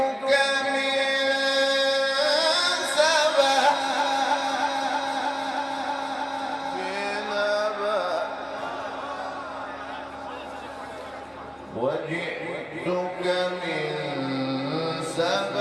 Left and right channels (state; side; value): identical; both; correlation 1.00